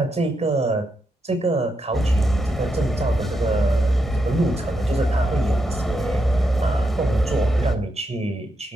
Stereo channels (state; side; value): normal; both; correlation 0.83